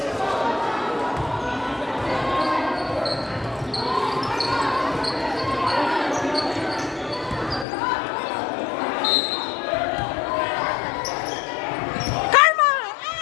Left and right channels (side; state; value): right; drops out; at 7.7 s